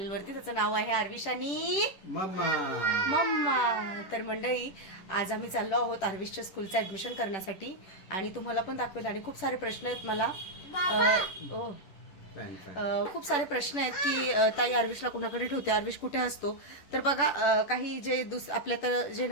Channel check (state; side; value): late; right; 10 ms